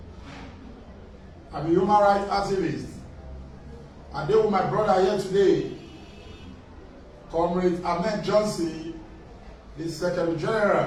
I'm a human rights activist. I deal with my brother here today, Comrade Ahmed Johnson, the Secretary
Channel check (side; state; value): both; identical; correlation 1.00